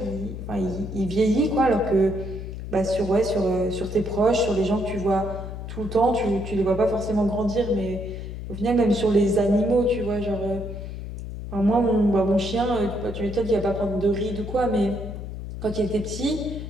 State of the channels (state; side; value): noise; left; hum, 8 dB below the sound